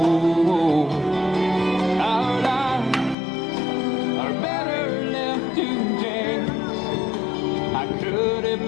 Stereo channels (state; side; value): drops out; right; at 3.2 s